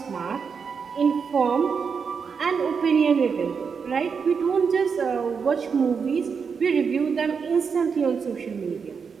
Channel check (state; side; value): quieter; left; 6.0 dB